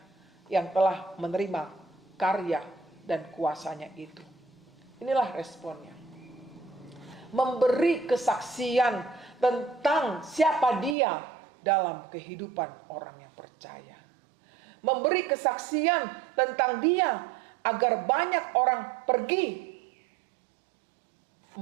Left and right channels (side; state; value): left; drops out; at 11.0 s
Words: yang telah menerima karya dan kuasanya itu? Inilah responnya. Memberi kesaksian tentang siapa Dia dalam kehidupan orang yang percaya. Memberi kesaksian tentang Dia agar banyak orang pergi